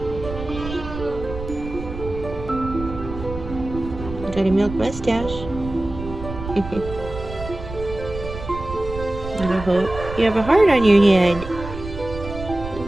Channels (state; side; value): noise; right; rumble, 10 dB below the sound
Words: Got a milk mustache. I hope you have a heart on your head.